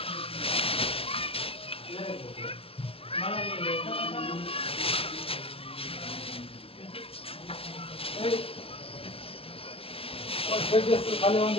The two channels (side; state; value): right; late; 0.27 ms